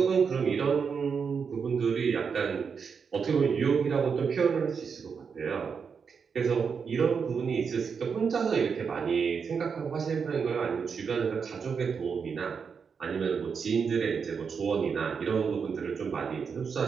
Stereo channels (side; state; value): left; quieter; 6.1 dB